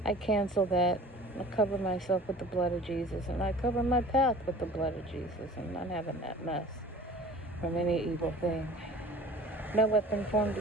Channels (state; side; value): normal; both; correlation 0.44